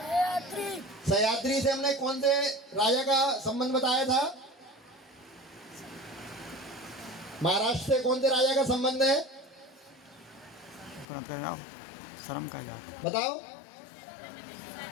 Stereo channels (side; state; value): right; drops out; at 11.1 s